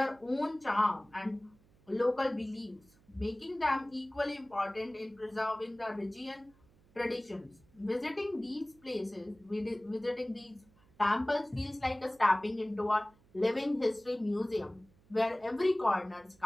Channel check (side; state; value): right; noise; hum, 29 dB below the sound